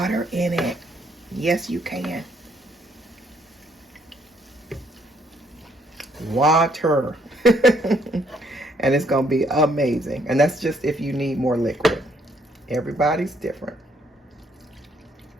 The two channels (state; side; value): normal; both; correlation 0.69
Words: in it. Yes, you can. Water. And it's going to be amazing. And that's just if you need more liquid. Everybody's different.